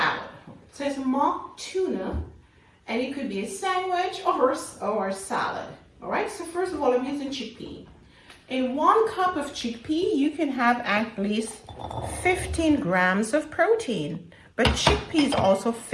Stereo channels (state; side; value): identical; both; correlation 1.00